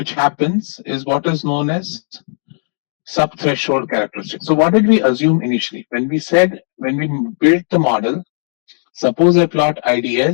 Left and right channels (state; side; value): silent; right; digital silence